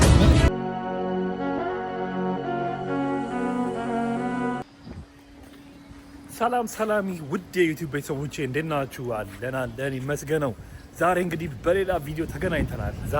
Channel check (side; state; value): both; identical; correlation 1.00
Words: ሰላም ሰላሚ ውድ የዩቲዩብ ቤተሰቦቼ እንዴት ናችሁ? አለን ይመስገነው። ዛሬ እንግዲህ በሌላ ቪዲዮ ተገናኝተናል።